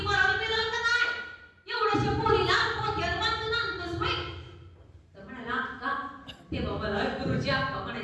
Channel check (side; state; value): both; identical; correlation 1.00